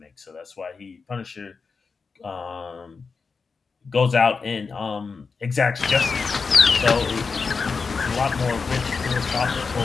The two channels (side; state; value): right; quieter; 4.9 dB